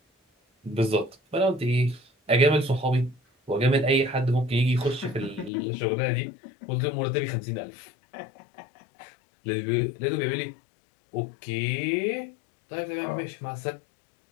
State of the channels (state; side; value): drops out; right; at 5.5 s